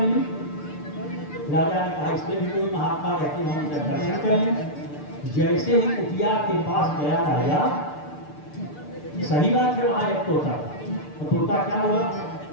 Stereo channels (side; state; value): right; late; 6.7 ms